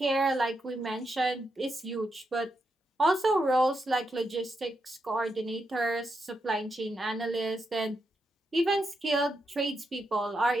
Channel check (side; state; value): both; normal; correlation 0.84